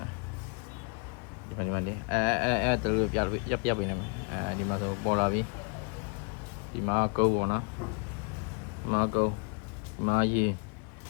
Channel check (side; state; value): right; quieter; 37.3 dB